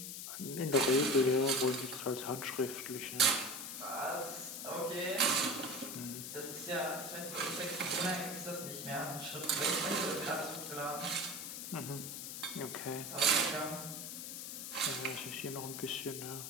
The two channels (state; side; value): noise; left; hiss, 7 dB below the sound